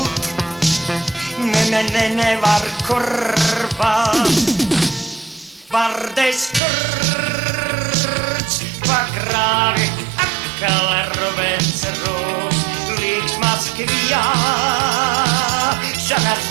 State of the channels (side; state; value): left; drops out; at 6.6 s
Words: nevar kurva. Vardes kurts pagrāvi, atkal Rubens Rūts, līks Maskvijā, šanas